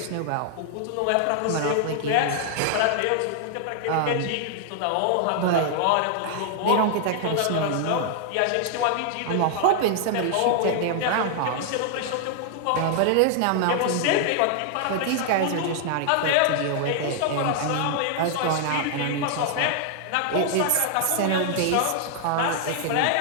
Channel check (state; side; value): different; both; correlation 0.00